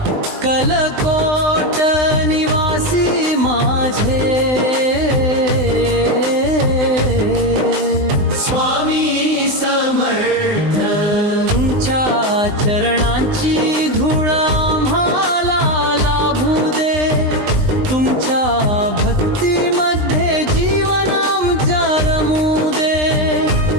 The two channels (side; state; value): left; late; 20 ms